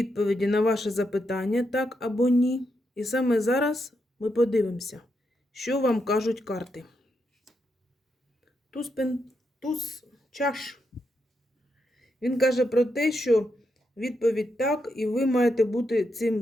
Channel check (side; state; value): both; normal; correlation 0.82